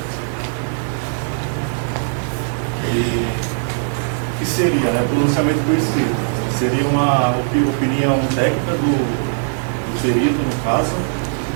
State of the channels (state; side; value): silent; left; digital silence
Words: E o que seria, né? Pronunciamento por escrito. Seria uma opinião técnica do perito, no caso,